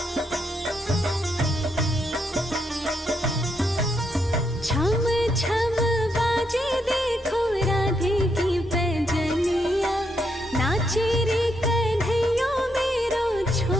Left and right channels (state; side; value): normal; both; correlation 0.78